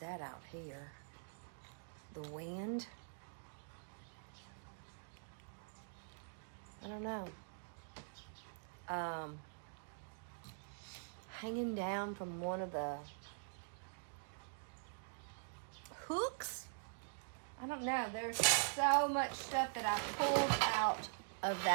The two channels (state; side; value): silent; left; digital silence